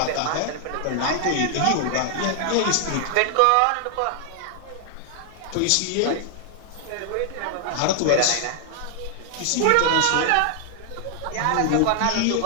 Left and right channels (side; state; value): both; different; correlation 0.00